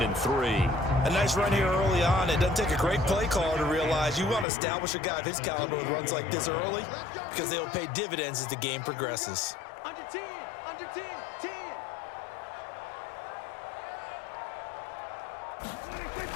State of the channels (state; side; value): drops out; right; at 4.5 s